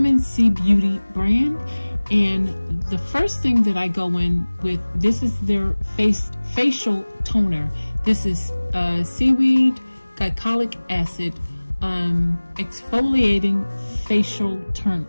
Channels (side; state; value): both; inverted; correlation -1.00